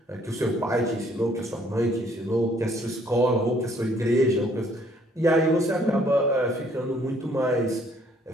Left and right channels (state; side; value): normal; both; correlation 0.63